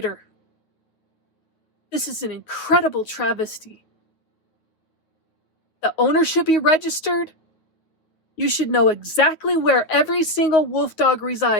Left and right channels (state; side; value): late; right; 9.4 ms